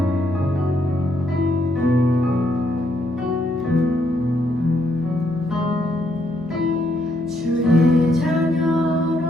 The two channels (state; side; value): noise; right; hum, 27 dB below the sound